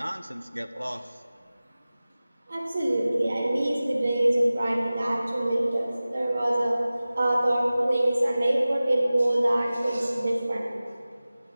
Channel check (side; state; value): both; inverted; correlation -0.97